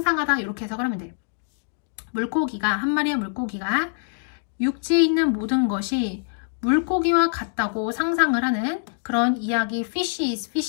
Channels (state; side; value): silent; right; digital silence